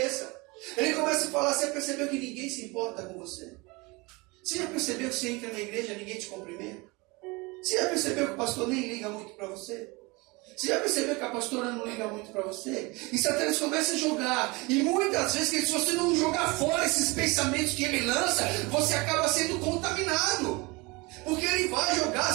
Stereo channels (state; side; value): quieter; left; 25.3 dB